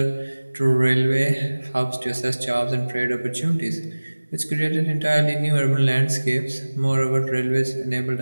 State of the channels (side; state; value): both; inverted; correlation -1.00